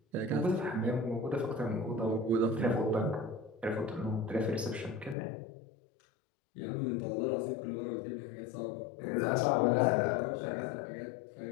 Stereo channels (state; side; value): drops out; right; at 5.2 s